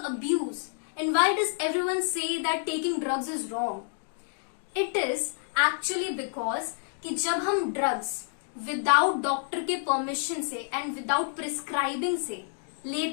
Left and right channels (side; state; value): right; silent; digital silence